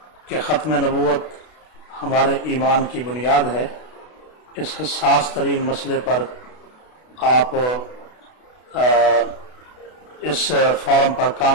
کہ ختم نبوت ہمارے ایمان کی بنیاد ہے. اس حساس ترین مسئلے پر آپ اس فورم پر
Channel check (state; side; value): late; right; 32 ms